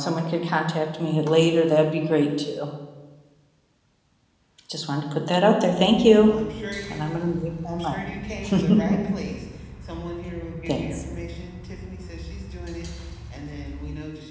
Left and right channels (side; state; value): both; identical; correlation 1.00